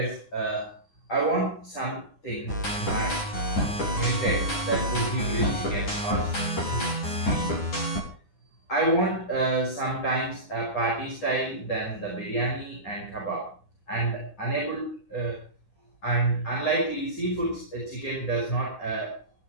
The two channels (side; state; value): right; late; 9.9 ms